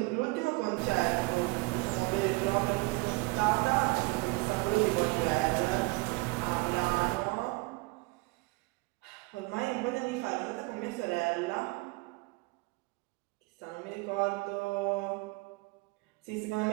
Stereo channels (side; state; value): left; quieter; 25.9 dB